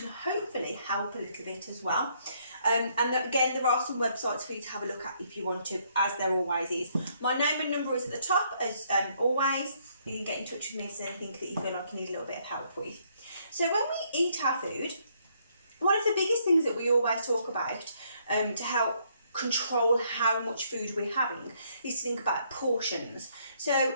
hopefully help a little bit as well. Again, there are some websites for you to have a look at if you want to, as there always is. My name and number is at the top, as always. You can get in touch with me if there's anything that you feel like you need a little bit of help with. So when we eat our food, one of the biggest things that we always talk about to help control how much food we're having is to think about portions. So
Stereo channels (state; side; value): inverted; both; correlation -0.69